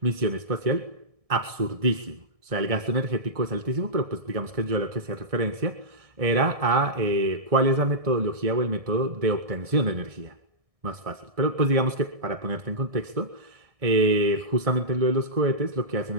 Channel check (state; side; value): late; left; 1.6 ms